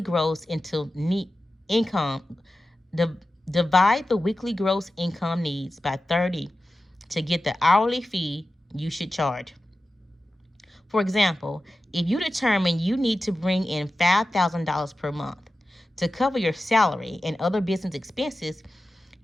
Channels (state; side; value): normal; both; correlation 0.94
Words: gross into income. Divide the weekly gross income needs by 30 to get the hourly fee you should charge. For example, if you determine you need to bring in $5,000 per month to cover your salary and other business expenses,